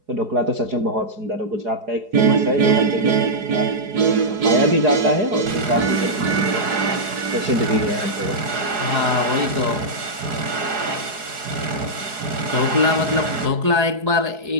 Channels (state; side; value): late; left; 4.7 ms